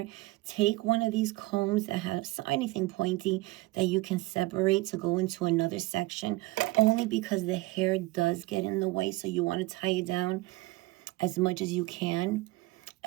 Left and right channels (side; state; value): left; quieter; 20.2 dB